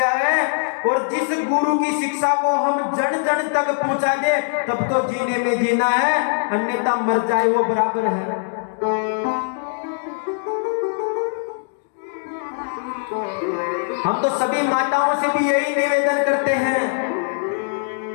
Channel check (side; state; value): right; silent; digital silence